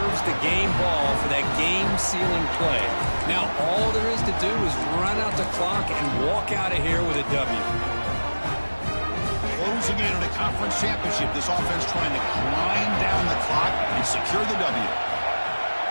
the game ball for that game-sealing play. Now, all there is to do is run out the clock and walk out of here with a W. Closing in on a conference championship, this offense trying to grind down the clock and secure the W.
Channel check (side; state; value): both; inverted; correlation -1.00